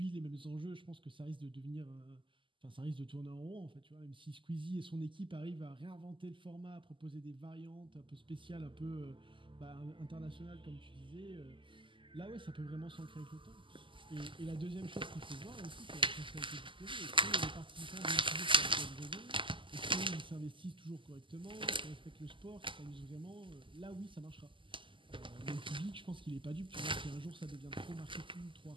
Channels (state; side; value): late; left; 0.25 ms